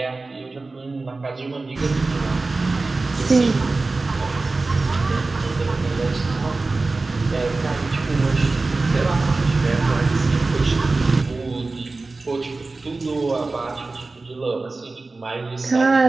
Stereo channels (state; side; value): quieter; left; 3.5 dB